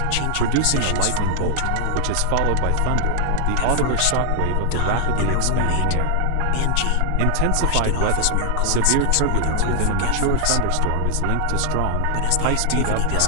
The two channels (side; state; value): both; different; correlation 0.00